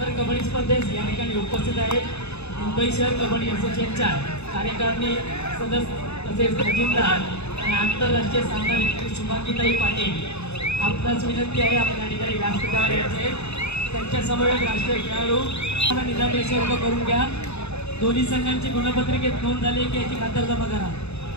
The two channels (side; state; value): right; late; 0.80 ms